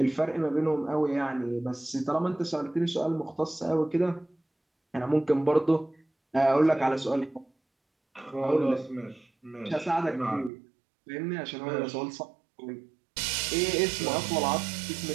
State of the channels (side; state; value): left; drops out; at 10.5 s